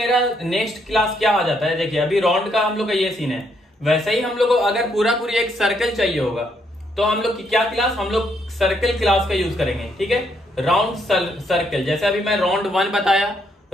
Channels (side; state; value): both; normal; correlation 0.73